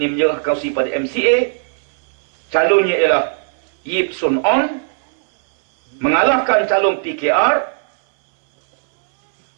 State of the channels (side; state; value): left; silent; 68 dB below the other